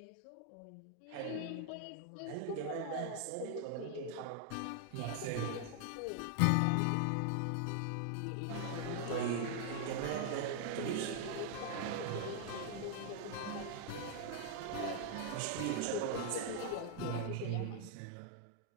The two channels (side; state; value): both; different; correlation 0.00